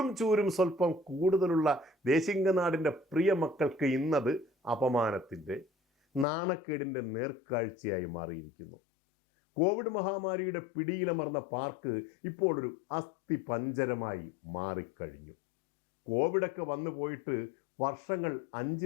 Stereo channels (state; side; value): drops out; right; at 6.2 s